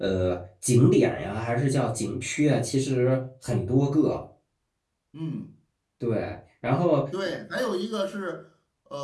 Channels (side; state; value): both; identical; correlation 1.00